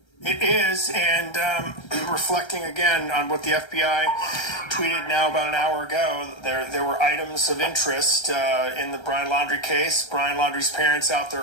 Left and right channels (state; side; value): late; right; 1.3 ms